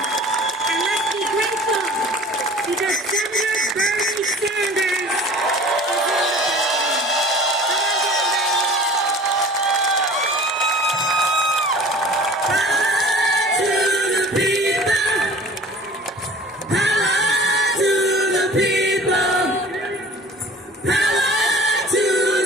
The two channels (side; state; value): both; normal; correlation 0.45